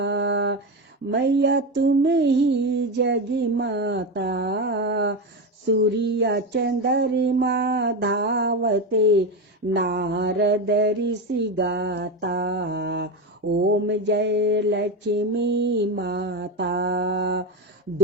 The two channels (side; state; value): both; normal; correlation 0.16